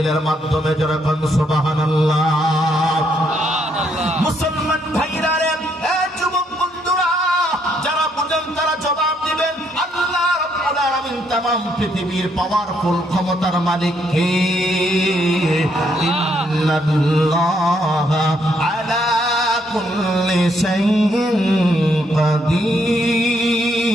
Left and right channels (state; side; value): normal; both; correlation 0.73